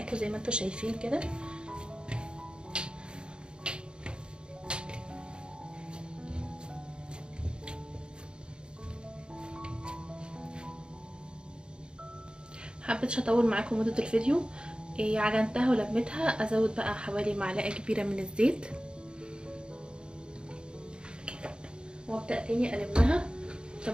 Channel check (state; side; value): late; left; 0.051 ms